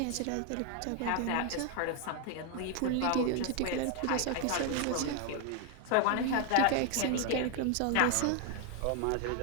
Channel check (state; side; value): different; both; correlation 0.00